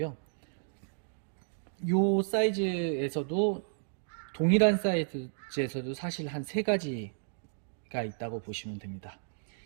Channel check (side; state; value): left; silent; digital silence